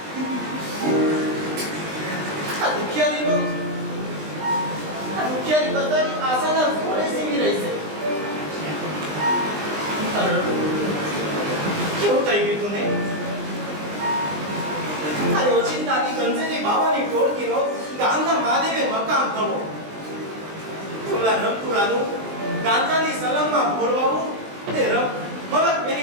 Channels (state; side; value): late; left; 20 ms